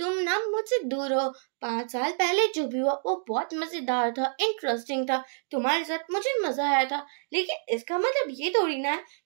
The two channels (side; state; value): left; silent; 59 dB below the other